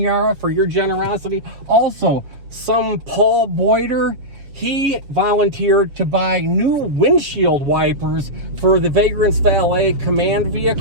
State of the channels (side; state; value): left; late; 7.2 ms